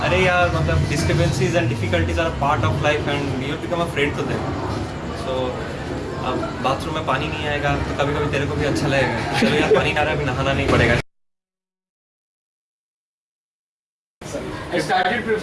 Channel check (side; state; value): both; identical; correlation 1.00